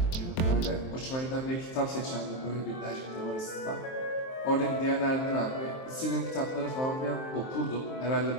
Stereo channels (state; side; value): late; right; 23 ms